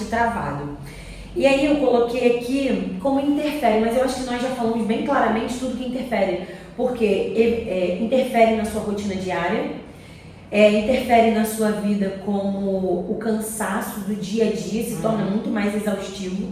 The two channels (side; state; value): both; identical; correlation 1.00